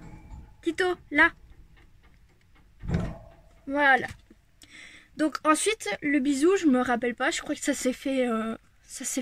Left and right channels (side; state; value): both; identical; correlation 1.00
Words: Tito, là. Voilà. Donc ensuite, le bisou, je me rappelle pas. Je crois que ça s'est